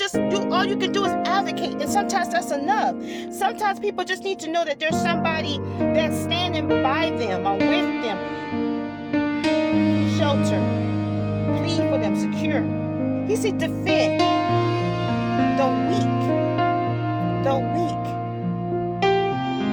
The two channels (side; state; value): both; identical; correlation 1.00